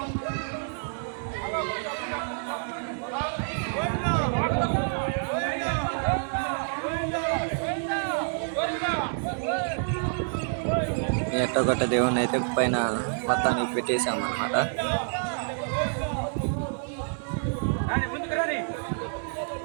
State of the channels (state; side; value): silent; left; digital silence